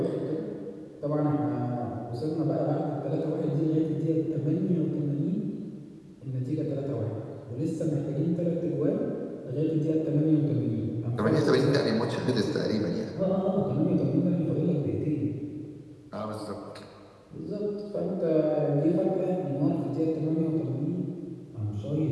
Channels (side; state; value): both; identical; correlation 1.00